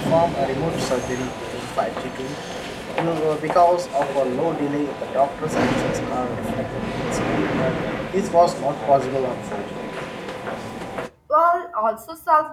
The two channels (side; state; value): both; identical; correlation 1.00